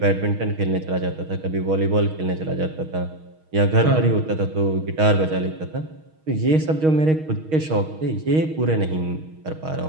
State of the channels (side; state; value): left; late; 6.4 ms